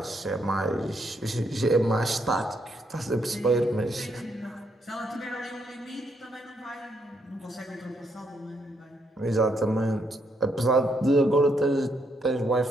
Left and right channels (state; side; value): normal; both; correlation 0.75